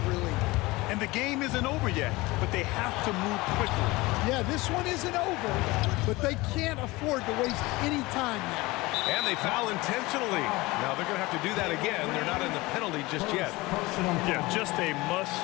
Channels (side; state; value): right; quieter; 21.6 dB